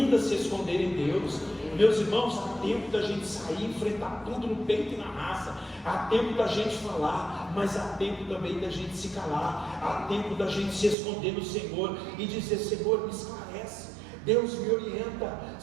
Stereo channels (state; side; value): drops out; left; at 11.0 s